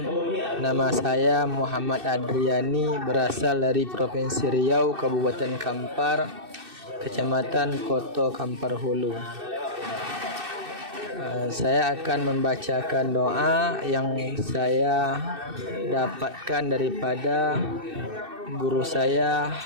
Nama saya Muhammad Adriani, berasal dari Provinsi Riau, Kabupaten Kampar, Kecamatan Koto Kampar Hulu. Saya akan membacakan doa yang saya dapatkan daripada guru saya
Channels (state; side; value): late; left; 2.6 ms